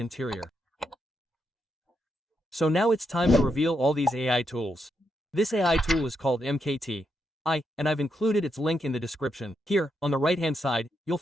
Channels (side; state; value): both; normal; correlation 0.81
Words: So now it's time to reveal all these AI tools. This AI tool is called MKT. And I've included its link in the description. Here, on the right-hand side, you'll